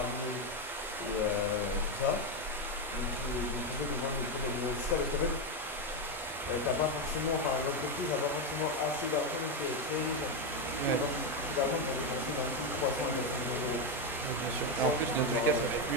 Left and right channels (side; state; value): both; normal; correlation 0.07